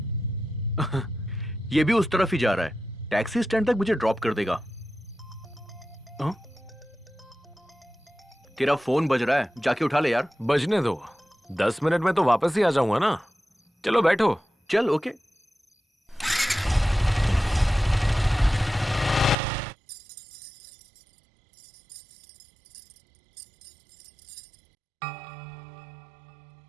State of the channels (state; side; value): drops out; left; at 19.4 s